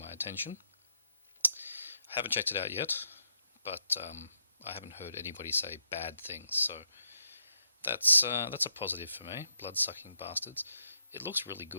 attention. I haven't checked it out yet, but I haven't heard anybody say bad things, so that's a positive for me. Blood-sucking bastards. It looks really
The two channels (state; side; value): inverted; both; correlation -0.77